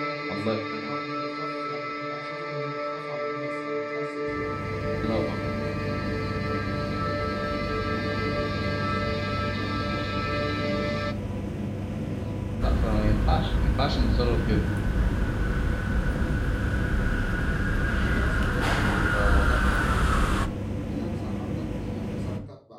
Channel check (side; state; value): both; identical; correlation 1.00